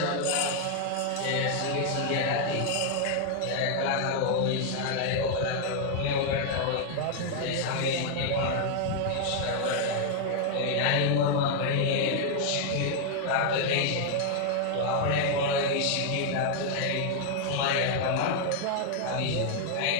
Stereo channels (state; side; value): different; both; correlation 0.00